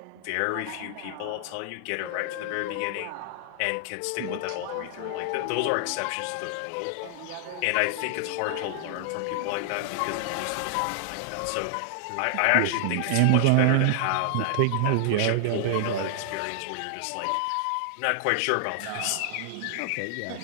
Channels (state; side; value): different; both; correlation -0.01